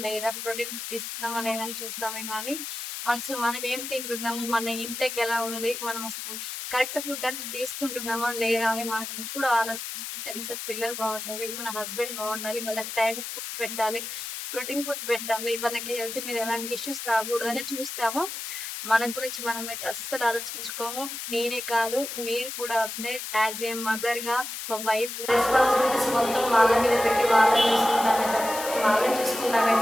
లేదా, ప్రోటీన్ ఫుడ్ ఇస్తున్నామా లేదా అని చూస్తామే కానీ, అసలు మనం ఏం తింటున్నాము, మన ఇంటేక్ ఎలా ఉంది, మనం అసలు కరెక్ట్ ఫుడ్ అనేది తీసుకుంటున్నామా లేదా అని మనం ఎప్పుడు ఆలోచించాలి. కనీసం పిల్లలు బాగుండాలి, మన హస్బెండ్ బాగుండాలి, వాళ్ళకి టైం ఫుడ్ పెట్టాలి, ప్రోటీన్ ఫుడ్ పెట్టాలి, వాళ్ళకి హెల్త్ మీద ఎలాంటి ఇష్యూస్ రాకూడదని చూస్తాము. మన గురించి మనమైతే అస్సలు ఆలోచించుకోము. నేనే కాదు మీరు కూడా అంతే. యాజ్ ఏ మదర్ గా ఒక వైఫ్ రెస్పాన్సిబిలిటీస్ మొత్తం వాళ్ళ మీద పెట్టి వాళ్ళని చూసుకుంటామే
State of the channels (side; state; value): left; noise; hiss, 7 dB below the sound